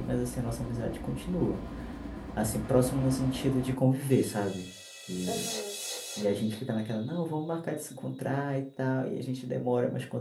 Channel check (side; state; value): both; identical; correlation 1.00